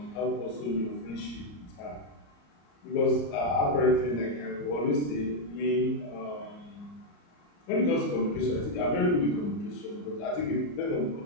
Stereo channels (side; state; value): right; late; 34 ms